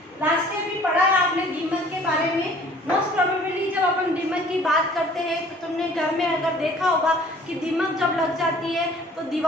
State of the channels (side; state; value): both; normal; correlation 0.53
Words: लास्ट में भी पढ़ा है आपने दीमक के बारे में। मोस्ट प्रोबेबली जब अपन दीमक की बात करते हैं तो तुमने घर में अगर देखा होगा कि दीमक जब लग जाती है तो